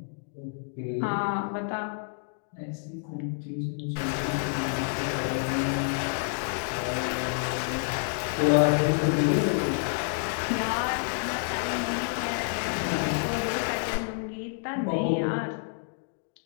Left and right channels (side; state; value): right; silent; digital silence